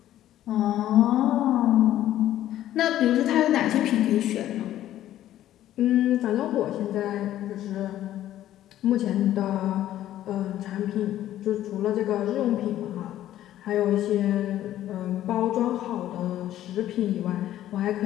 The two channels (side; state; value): right; quieter; 12.8 dB